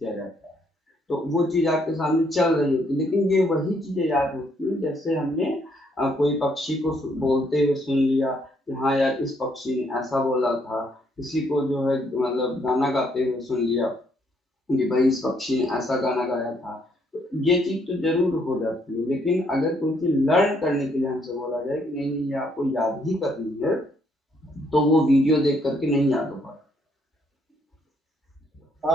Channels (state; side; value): normal; both; correlation 0.70